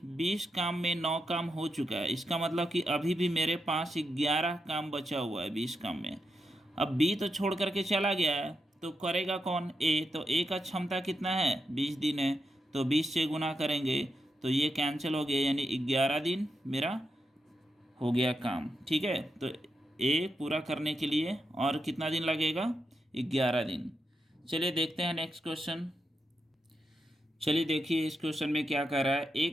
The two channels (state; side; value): normal; both; correlation 0.85